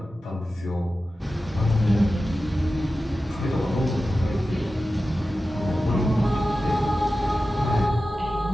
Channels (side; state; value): both; normal; correlation 0.94